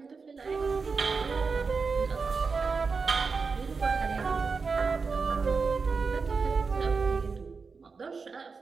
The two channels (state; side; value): quieter; left; 4.8 dB